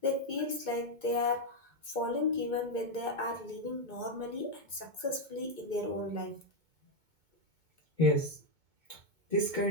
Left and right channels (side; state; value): left; late; 2.2 ms